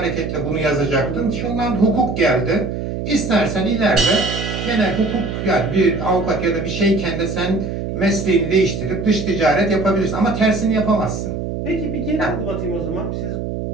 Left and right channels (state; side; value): noise; right; hum, 4 dB below the sound